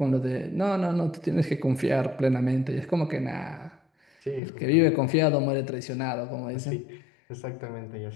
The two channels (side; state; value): right; drops out; at 4.4 s